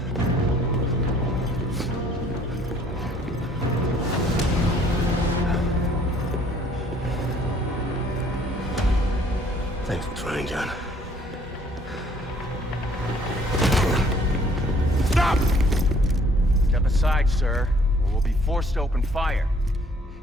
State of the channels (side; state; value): both; normal; correlation 0.60